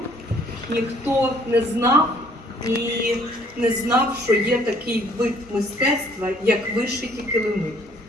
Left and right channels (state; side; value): normal; both; correlation 0.61